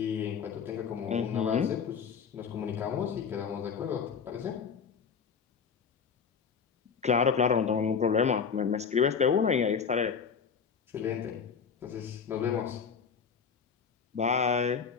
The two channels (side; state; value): right; quieter; 6.2 dB